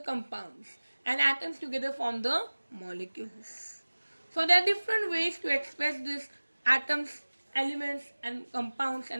and atoms together form the molecules. So there are different ways to express this atoms, elements and compounds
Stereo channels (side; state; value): both; inverted; correlation -1.00